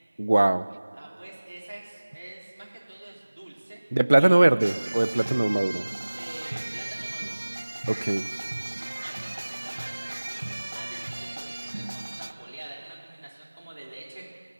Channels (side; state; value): both; inverted; correlation -1.00